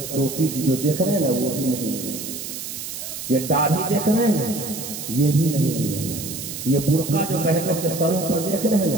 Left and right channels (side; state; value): right; noise; hiss, 8 dB below the sound